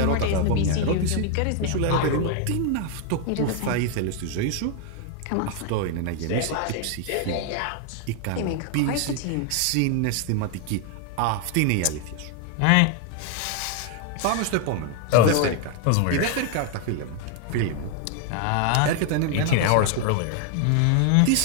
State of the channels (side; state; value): both; different; correlation 0.00